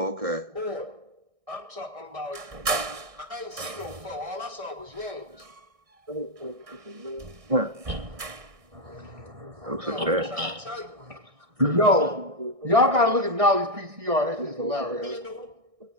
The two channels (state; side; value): late; left; 1.6 ms